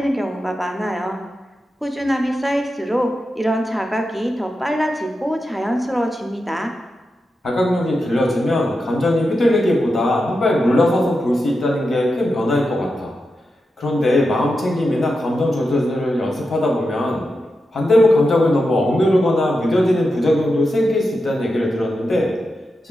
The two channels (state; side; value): normal; both; correlation 0.89